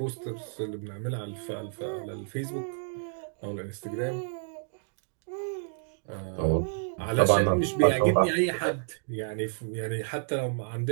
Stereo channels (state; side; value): silent; left; 58 dB below the other